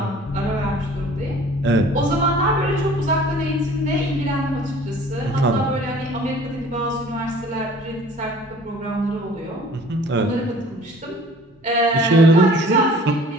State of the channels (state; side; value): normal; both; correlation 0.49